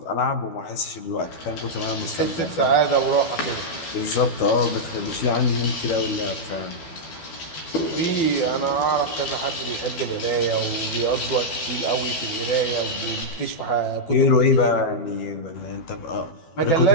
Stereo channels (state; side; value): late; right; 12 ms